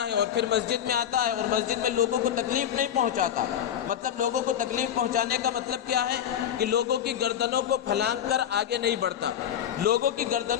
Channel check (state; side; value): quieter; right; 9.8 dB